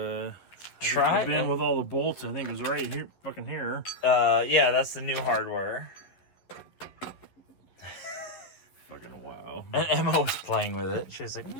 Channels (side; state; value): right; late; 11 ms